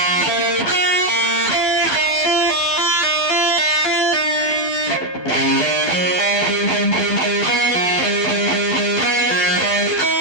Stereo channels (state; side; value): late; right; 12 ms